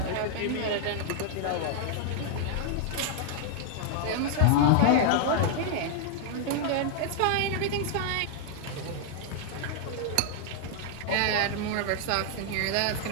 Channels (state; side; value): different; both; correlation 0.00